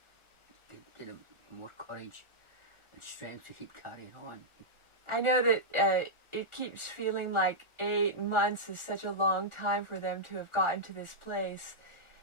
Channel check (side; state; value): left; late; 1.4 ms